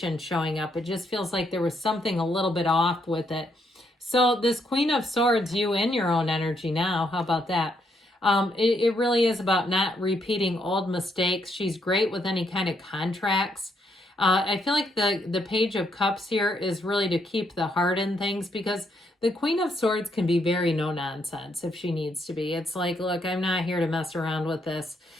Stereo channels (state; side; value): normal; both; correlation 0.75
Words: showing up. It just feels like there was something a little bit off with it. So this Queen of Swords, you in your own energy now. How about that? It really is about not repeating old mistakes. She's great with any kind of contracts. I feel like the Page of Cups here is really to keep the heart in things, because the Queen of Swords can be very no nonsense if she needs to be. It's like, look, I'm not here to mess around with this.